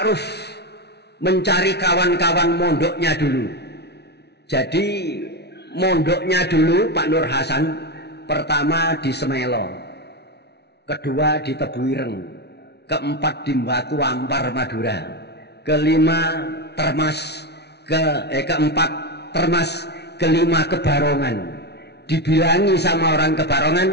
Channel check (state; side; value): late; right; 0.49 ms